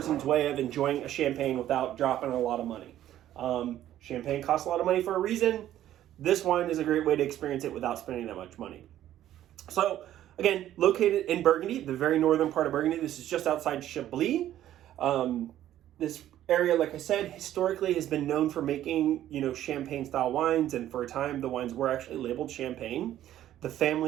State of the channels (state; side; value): quieter; left; 12.4 dB